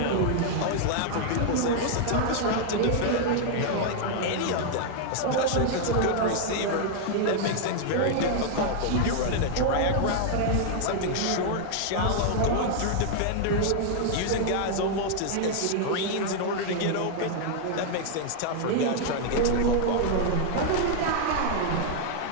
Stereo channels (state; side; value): different; both; correlation 0.00